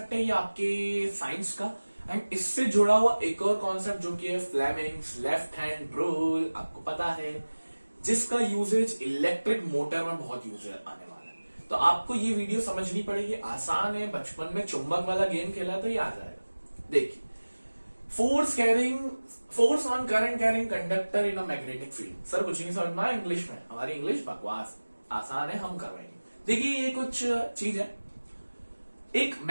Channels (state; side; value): inverted; both; correlation -1.00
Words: है ये आपके साइंस का, एंड इससे जुड़ा हुआ एक और कॉन्सेप्ट जो कि है फ्लेमिंग्स लेफ्ट हैंड रूल, आपको पता है, जिसका यूजेज इलेक्ट्रिक मोटर में बहुत यूज आने वाला है। तो आपको ये वीडियो समझनी पड़ेगी, आसान है, बचपन में चुंबक वाला गेम खेला तो ये आ जाएगा। देखिए, force on current carrying conductor in a magnetic field. Sir कुछ नहीं समझ में आया इंग्लिश में, हमारी इंग्लिश बकवास, आसान है, हम करवाएंगे। देखिए ये कुछ चीज है, एक